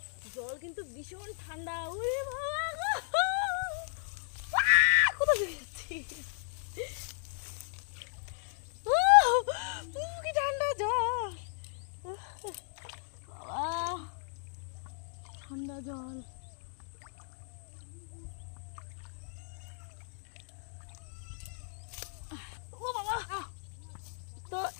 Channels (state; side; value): silent; right; digital silence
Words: জল কিন্তু ভীষণ ঠান্ডা। ওরে বাবা গো! কোথায় যাচ্ছি? কি ঠান্ডা জল! বাবা, ঠান্ডা জল। ও বাবা! তো